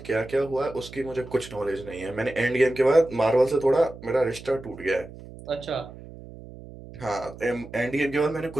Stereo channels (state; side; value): noise; right; hum, 16 dB below the sound